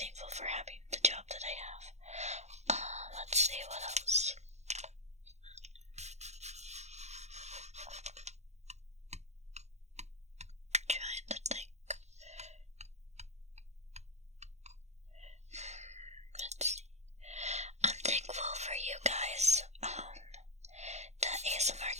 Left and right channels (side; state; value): left; late; 0.33 ms